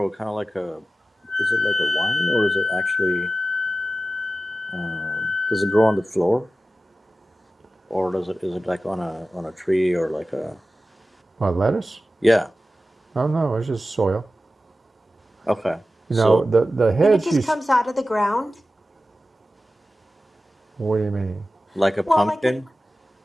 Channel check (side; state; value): both; normal; correlation 0.94